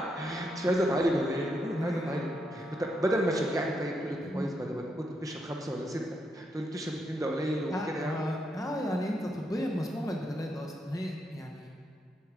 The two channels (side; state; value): both; normal; correlation 0.80